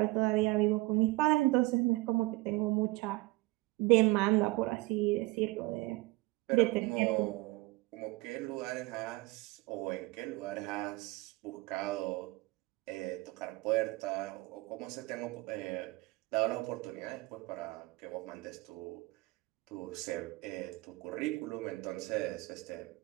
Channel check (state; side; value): quieter; left; 21.8 dB